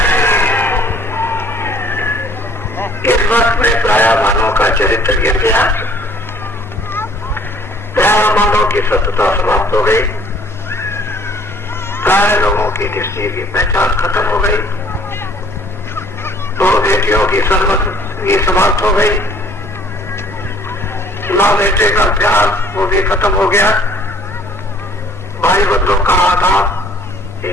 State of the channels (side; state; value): both; normal; correlation 0.58